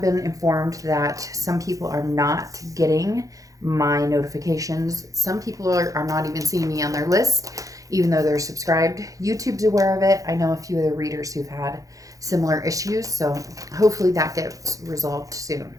been informed that some people are not getting my notifications. Some people are not even seeing me on their list, even though they're subscribed. YouTube's aware of it. I know a few other readers who've had similar issues, so hopefully that gets resolved soon.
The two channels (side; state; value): left; late; 0.17 ms